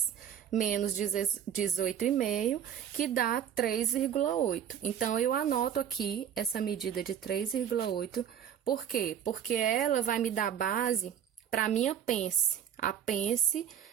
menos 18,5, que dá 3,8. Então, eu anoto aqui essa medida de 3,8. Por quê? Porque ela vai me dar base para a minha pence, a pence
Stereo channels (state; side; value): quieter; left; 9.2 dB